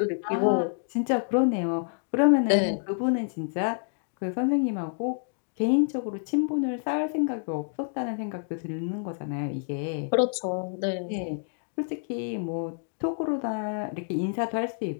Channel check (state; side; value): silent; right; 59 dB below the other